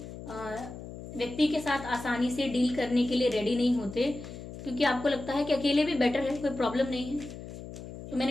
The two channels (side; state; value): left; noise; hum, 12 dB below the sound